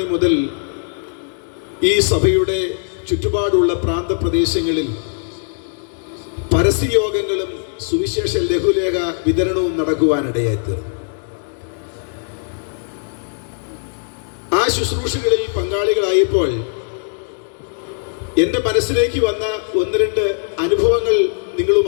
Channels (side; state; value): right; silent; digital silence